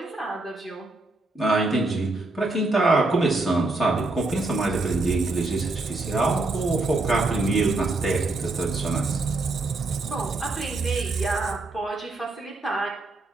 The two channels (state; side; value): quieter; left; 3.1 dB